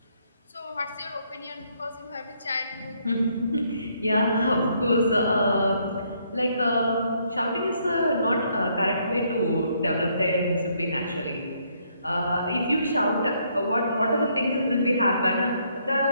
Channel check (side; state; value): both; inverted; correlation -0.71